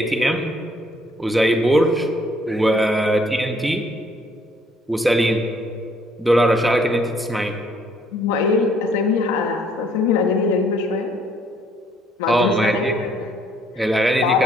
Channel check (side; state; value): both; normal; correlation 0.64